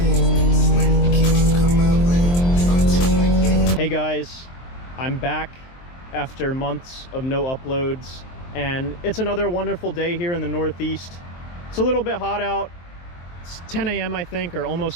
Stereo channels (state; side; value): late; right; 23 ms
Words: When the keep come my way, I'm too like yeah. Hey guys, I'm back after months of no uploads, and it's another wonderful day here in the Northeast. It's a little bit hot out. It's 10 a.m. I think, or